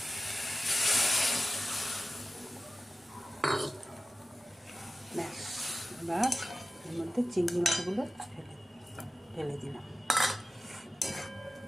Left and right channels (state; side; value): normal; both; correlation 0.95